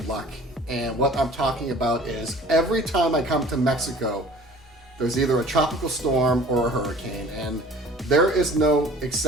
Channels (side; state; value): both; normal; correlation 0.48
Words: luck. And what I'm talking about is every time I come to Mexico, there's either a tropical storm or a hurricane. And there is no